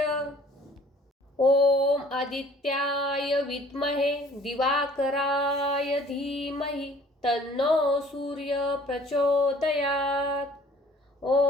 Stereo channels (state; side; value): normal; both; correlation 0.54